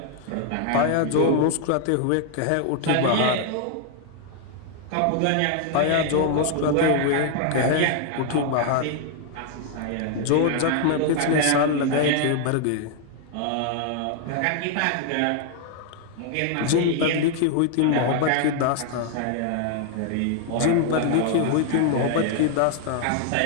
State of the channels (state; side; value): different; both; correlation 0.00